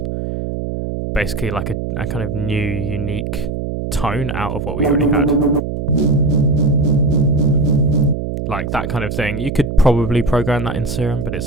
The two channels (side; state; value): right; noise; hum, 4 dB below the sound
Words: basically like a kind of new unique tone out of what we already had. Like that kind of thing. You could probably program that in Serum, but it's